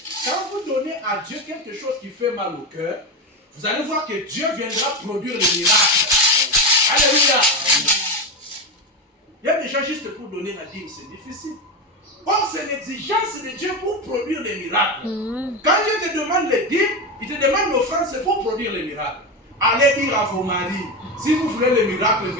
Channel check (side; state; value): both; normal; correlation 0.16